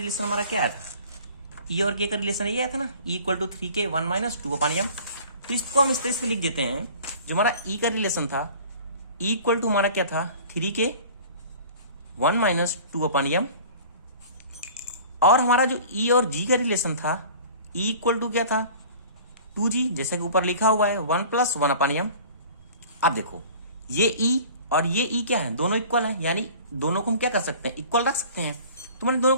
हमारा क्या आया था, ई और के का रिलेशन ये आया था ना, ई = 3k 1 - 2/m। तो इसको हम इस तरह से लिख देते हैं, जो हमारा ई का रिलेशन था, ई इक्वल टू हमारा क्या था 3k 1 - 2/m, और हमारा जो ई और जी का रिलेशन था, ई इक्वल टू क्या था 2g, जैसे कि ऊपर लिखा हुआ है 1 + 1/m। अब देखो ये ई और ये ई क्या है, दोनों इक्वल है, यानी दोनों को हम क्या कर सकते हैं, इक्वल रख सकते हैं। तो मैंने दोनों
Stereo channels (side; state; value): both; inverted; correlation -0.45